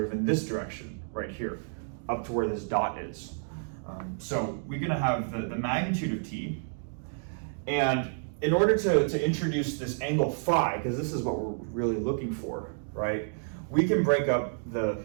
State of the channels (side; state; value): left; silent; digital silence